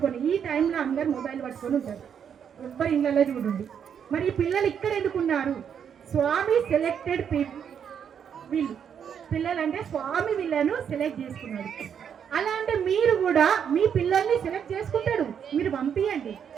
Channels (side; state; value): left; quieter; 7.9 dB